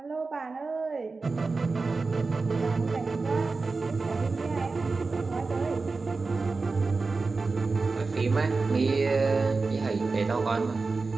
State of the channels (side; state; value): left; quieter; 4.0 dB